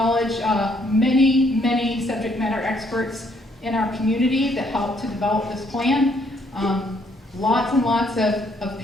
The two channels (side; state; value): both; normal; correlation 0.69